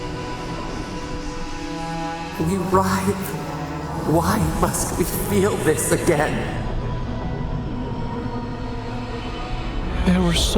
writhe. Why must we feel this again? There were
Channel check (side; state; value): both; identical; correlation 1.00